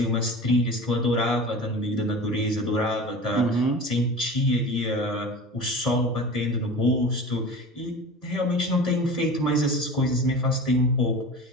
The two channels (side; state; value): both; normal; correlation 0.35